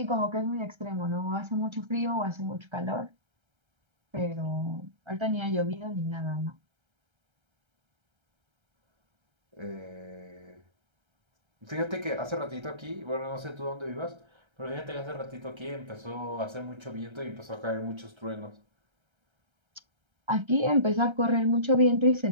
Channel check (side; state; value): left; late; 1.3 ms